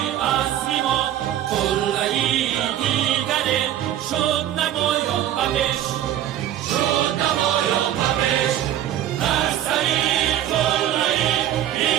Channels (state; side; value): quieter; left; 11.8 dB